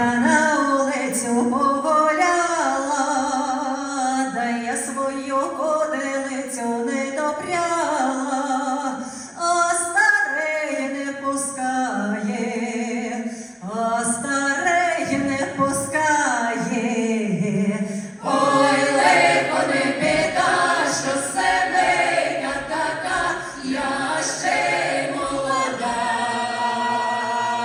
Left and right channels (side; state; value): both; identical; correlation 1.00